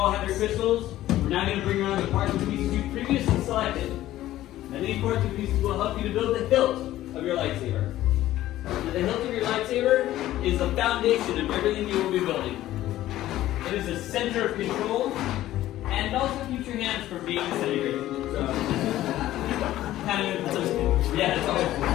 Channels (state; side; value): quieter; right; 14.4 dB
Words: have your crystals, we're now going to bring around the parts and pieces you previously selected. And these parts and pieces will help you to build the hilt of your lightsaber. Now, the hilt of your lightsaber is the foundation of everything you will be building. It is a center of control, and it also keeps your hands from being disintegrated. So, kind of, yeah, it's always.